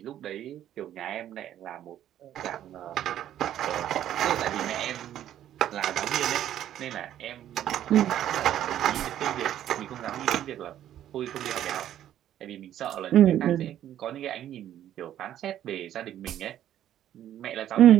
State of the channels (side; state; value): left; quieter; 11.5 dB